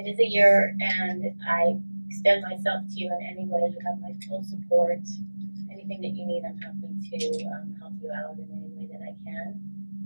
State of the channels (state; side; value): inverted; both; correlation -1.00